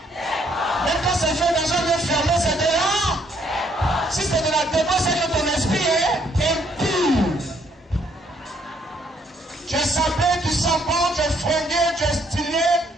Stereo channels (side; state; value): both; normal; correlation 0.69